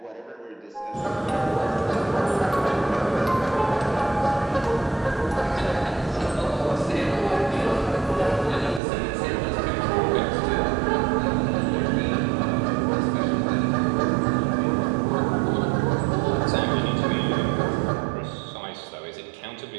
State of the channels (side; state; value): left; drops out; at 8.8 s